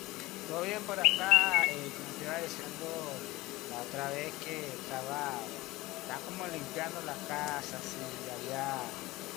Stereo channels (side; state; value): right; quieter; 19.5 dB